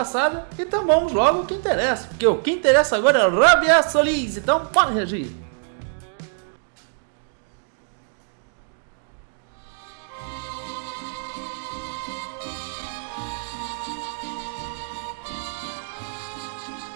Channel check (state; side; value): silent; left; digital silence